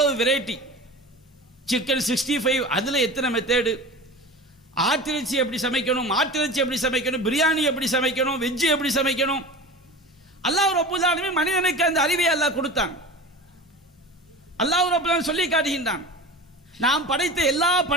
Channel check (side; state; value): both; normal; correlation 0.33